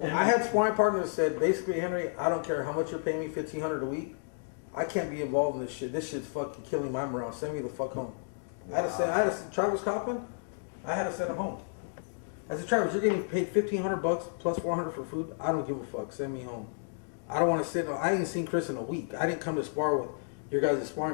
And I had sparring partners that said, basically, Henry, I don't care how much you're paying me, $1,500 a week. I can't be involved in this shit. This shit's fucking killing my morale. Send me the fuck home. Wow. I had to send Travis Coppin, I had to send him home. I said, Travis, you're getting paid $1,500 plus $400 for food. I don't give a fuck. Send me home. I don't want to sit. I ain't seen Chris in a week. I didn't come to spar with your guys' sparring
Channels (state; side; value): silent; right; digital silence